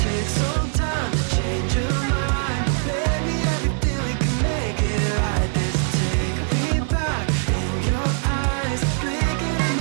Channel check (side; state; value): left; silent; 57 dB below the other